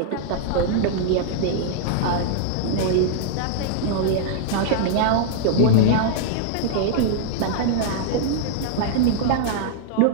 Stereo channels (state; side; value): different; both; correlation -0.01